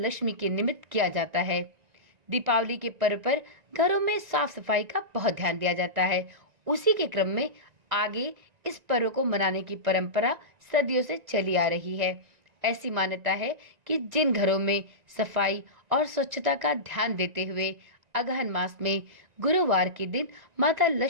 के निमित्त किया जाता है। दीपावली के पर्व पर घरों में साफ सफाई का बहुत ध्यान दिया जाता है। उसी के क्रम में आगे इस पर्व को मनाने की परंपरा सदियों से चली आ रही है। ऐसी मान्यता है कि जिन घरों में सफाई और स्वच्छता का ध्यान देते हुए अगहन मास में गुरुवार के दिन माता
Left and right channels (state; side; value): late; left; 1.9 ms